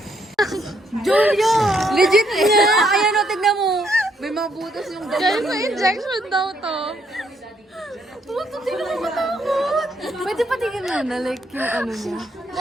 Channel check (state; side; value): normal; both; correlation 0.72